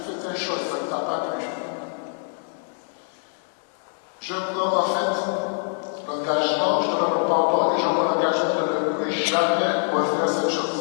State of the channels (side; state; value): right; silent; 62 dB below the other